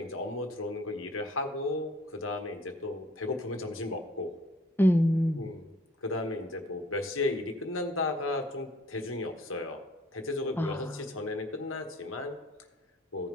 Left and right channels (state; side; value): normal; both; correlation 0.55